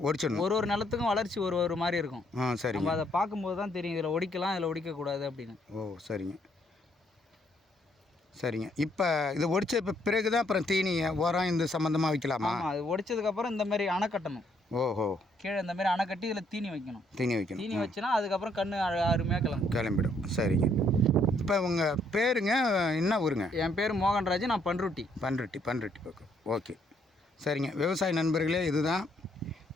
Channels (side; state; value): both; normal; correlation 0.69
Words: ஒடிச்சிடணும். ஒரு நிலத்துக்கும் வளர்ச்சி ஒரு மாதிரி இருக்கும். சரி, நம்ம அதை பார்க்கும்போது தான் தெரியும் இதில் ஒடிக்கலாம், இதில் ஒடிக்கக்கூடாது அப்படின்னு. சரிங்க சரிங்க. இப்போ இதை ஒடிச்ச பிறகு தான் அப்புறம் தீனி உரம் இந்த சம்மந்தமாக வைக்கலாமா? ஆமாம், அது ஒடிச்சதுக்கப்புறம் இந்த மாதிரி அணை கட்டணும். கீழே இந்த மாதிரி அணை கட்டி இதில் தீனி வைக்கணும். தீனி வச்சுனா அதுக்கப்புறம் கன்று அருமையாக கிளம்பிடும். சரிங்க. இப்போ உங்கள் பேருங்க, என்ன ஊருங்க? என் பேர் மோகன்ராஜ். நான் பண்ருட்டி பக்கம். ஓகே, சரிங்க. விவசாய நண்பர்களே, இதுதான்